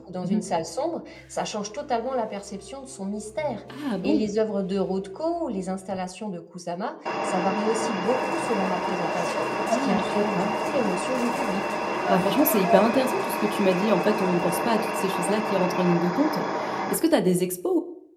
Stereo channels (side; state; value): both; identical; correlation 1.00